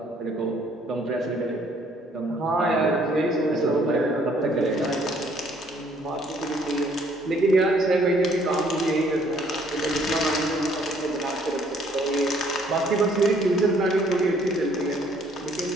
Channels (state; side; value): normal; both; correlation 0.63